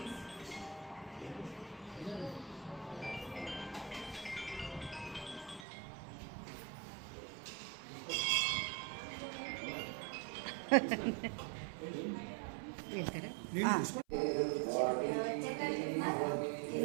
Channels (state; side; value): drops out; left; at 5.7 s